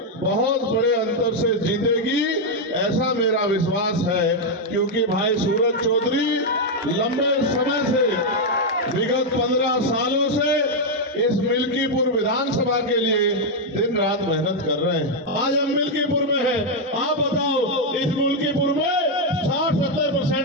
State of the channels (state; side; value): normal; both; correlation 0.00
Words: बहुत बड़े अंतर से जीतेगी, ऐसा मेरा विश्वास है। क्योंकि भाई सूरज चौधरी लंबे समय से, विगत 15 सालों से इस मिल्कीपुर विधानसभा के लिए दिन रात मेहनत कर रहे हैं। आज हम मिल्कीपुर में हैं। आप बताओ, इस मिल्कीपुर में